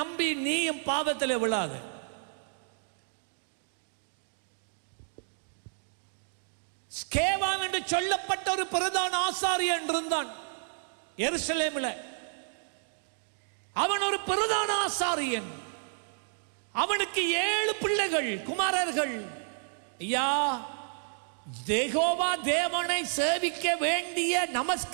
நீயும் பாவத்திலே விழாத. ஸ்கேவான் என்று சொல்லப்பட்ட ஒரு பிரதான ஆசாரியன் இருந்தான் எருசலேமில். அவன் ஒரு பிரதான ஆசாரியன். அவனுக்கு 7 பிள்ளைகள், குமாரர்கள். ஐயா, யெகோவா தேவனை சேவிக்க வேண்டிய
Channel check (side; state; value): left; silent; digital silence